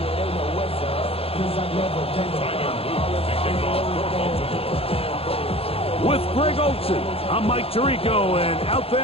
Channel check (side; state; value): right; late; 0.28 ms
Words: With Greg Olsen, I'm Mike Tirico, and out